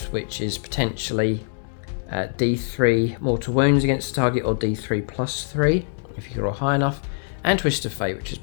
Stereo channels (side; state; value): right; silent; digital silence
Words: which is potentially D3 mortal wounds against the target, or D3 plus 3 if you roll high enough, and Twist of Fate, which is